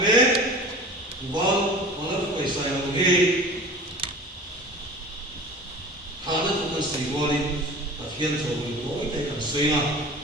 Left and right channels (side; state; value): both; normal; correlation 0.39